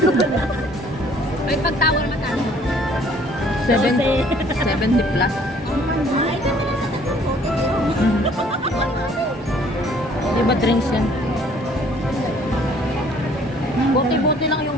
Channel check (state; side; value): normal; both; correlation 0.58